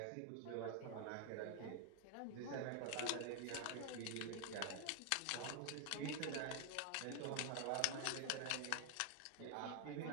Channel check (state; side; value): different; both; correlation 0.00